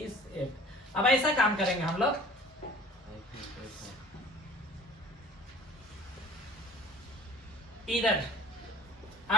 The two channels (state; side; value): normal; both; correlation 0.46